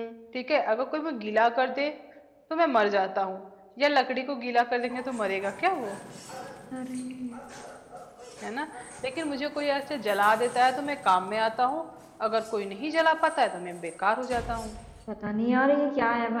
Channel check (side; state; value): both; identical; correlation 1.00